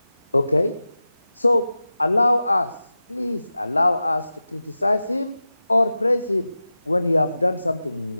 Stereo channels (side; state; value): both; inverted; correlation -0.95